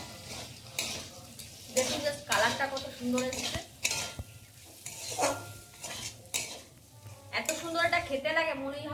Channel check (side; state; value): both; identical; correlation 1.00